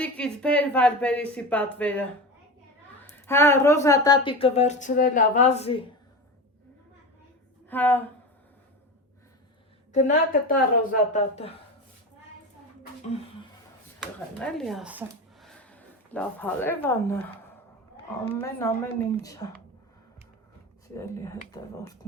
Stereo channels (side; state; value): both; normal; correlation 0.26